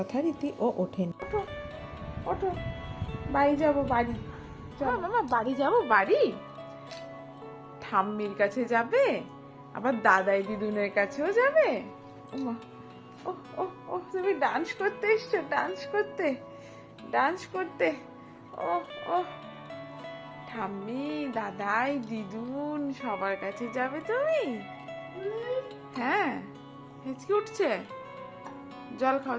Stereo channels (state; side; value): identical; both; correlation 1.00